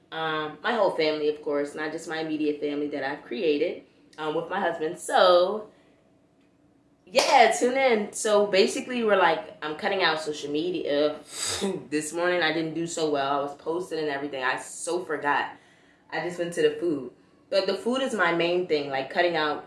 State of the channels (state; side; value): identical; both; correlation 1.00